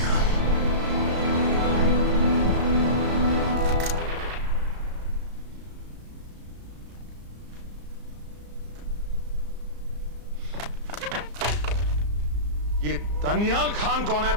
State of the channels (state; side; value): late; left; 34 ms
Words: ये दनियाल खान कौन है,